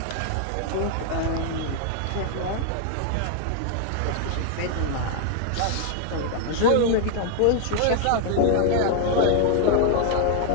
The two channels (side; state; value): both; different; correlation 0.00